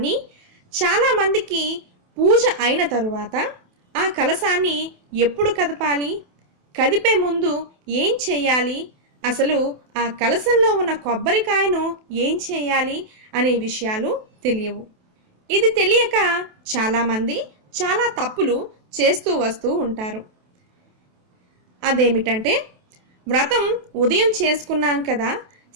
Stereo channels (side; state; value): left; late; 28 ms